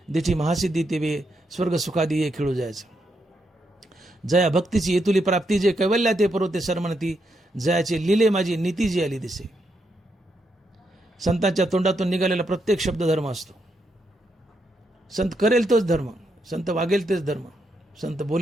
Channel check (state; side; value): normal; both; correlation 0.80